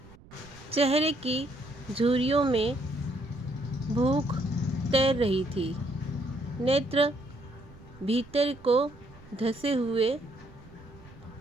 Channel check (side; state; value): right; noise; rumble, 22 dB below the sound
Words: चेहरे की झुर्रियों में भूख तैर रही थी, नेत्र भीतर को धंसे हुए